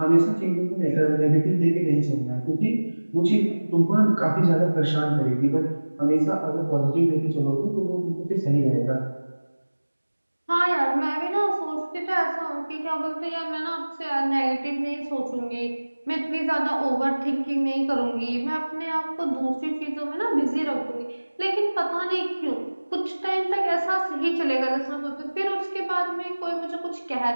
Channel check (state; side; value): inverted; both; correlation -1.00